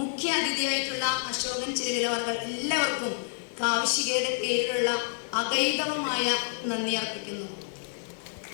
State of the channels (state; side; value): silent; right; digital silence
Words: അതിഥിയായിട്ടുള്ള അശോകൻ ചിരവിലവർകൾ, എല്ലാവർക്കും കാവ്യശികയുടെ പേരിലുള്ള അഗൈതവമായ നന്ദി അർപ്പിക്കുന്നു.